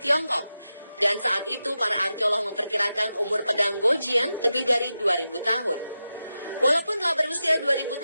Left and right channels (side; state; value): both; inverted; correlation -0.91